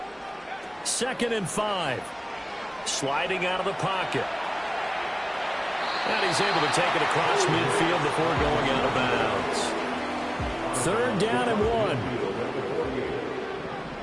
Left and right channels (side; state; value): both; identical; correlation 1.00